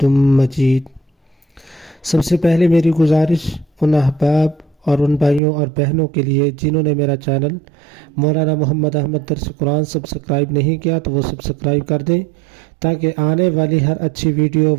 مجید۔ سب سے پہلے میری گزارش ان احباب اور ان بھائیوں اور بہنوں کے لیے جنہوں نے میرا چینل مولانا محمد احمد درس قرآن سبسکرائب نہیں کیا تو وہ سبسکرائب کر دیں تاکہ آنے والی ہر اچھی ویڈیو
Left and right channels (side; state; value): left; drops out; at 5.4 s